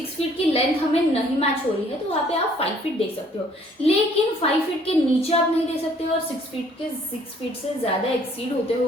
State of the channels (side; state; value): both; normal; correlation 0.60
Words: फीट की लेंथ हमें नहीं मैच हो रही है, तो वहां पे आप 5 फीट दे सकते हो, लेकिन 5 फीट के नीचे आप नहीं दे सकते हो और 6 फीट से ज्यादा एक्सीड होते हो